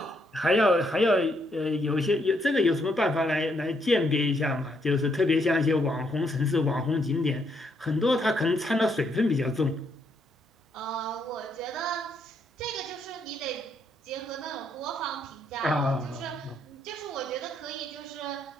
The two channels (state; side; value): normal; both; correlation 0.74